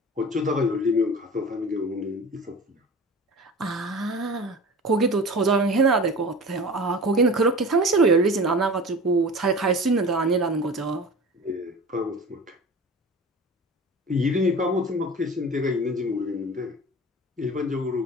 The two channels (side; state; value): both; normal; correlation 0.37